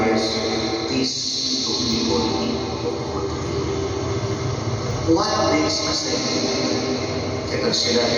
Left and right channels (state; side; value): identical; both; correlation 1.00